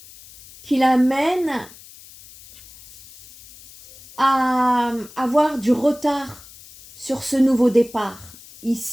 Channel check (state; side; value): noise; left; hiss, 21 dB below the sound